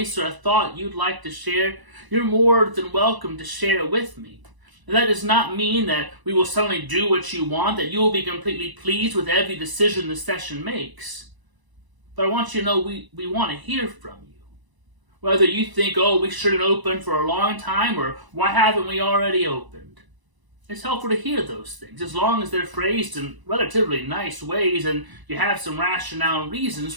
or a thought you'd like to share, you're more than welcome to share it with me. And that does not mean that we will suddenly do what you want, that you will be completely pleased with every decision the session makes. But I want you to know we want to hear from you. Whether you think, oh, we shouldn't open for a long time, or why haven't we already opened? It's helpful to hear those things, as long as they're phrased in relatively nice ways and you have some rationale and reasons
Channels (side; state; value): left; late; 1.0 ms